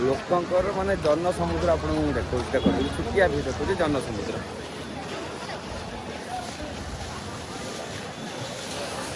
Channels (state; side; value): identical; both; correlation 1.00